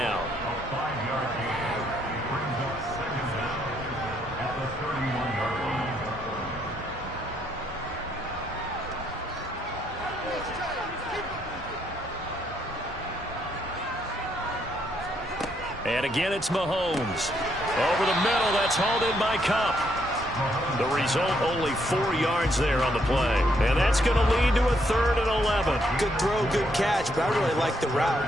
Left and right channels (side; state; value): both; normal; correlation 0.73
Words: A 5-yard gain brings up 2nd down at the 31-yard line. And again, it's Mahomes. Over the middle, that's hauled in by Kupp. The result, only 4 yards there on the play. And that's going to lead to a 3rd and 11. Good throw, good catch, but I really like the